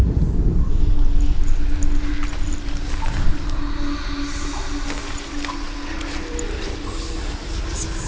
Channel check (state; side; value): identical; both; correlation 1.00